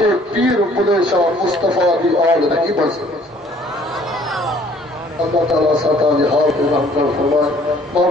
پیر بلے شاہ مصطفیٰ دی آل نہیں بڑھ سکتا اللہ تعالیٰ ساتھ حال کو رحم کر فرمائے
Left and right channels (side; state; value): both; normal; correlation 0.58